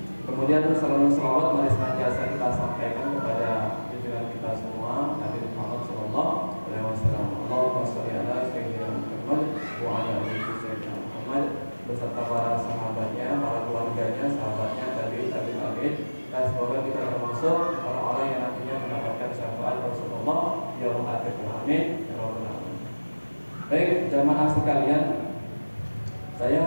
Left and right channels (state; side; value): inverted; both; correlation -1.00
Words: Kemudian salawat mari senantiasa kita sampaikan kepada junjungan kita semua Nabi Muhammad sallallahu alaihi wasallam. Allahumma shalli ala sayyidina Muhammad wa ala ali sayyidina Muhammad, beserta para sahabatnya, para keluarganya, sahabatnya, tabi'in, dan semoga kita termasuk orang-orang yang nantinya mendapatkan syafaat Rasulullah yaumul akhir. Amin ya rabbal alamin. Baik, jamaah sekalian,